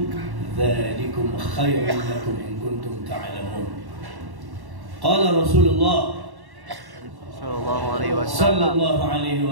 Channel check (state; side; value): late; left; 1.1 ms